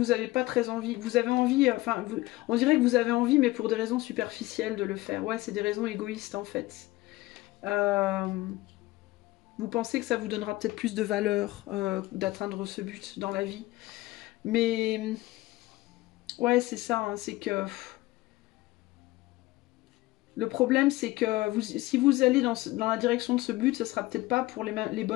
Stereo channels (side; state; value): right; quieter; 18.9 dB